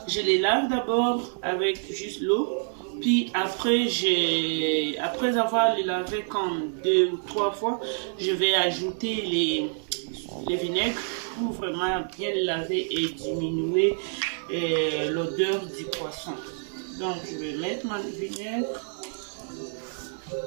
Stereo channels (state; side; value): silent; left; digital silence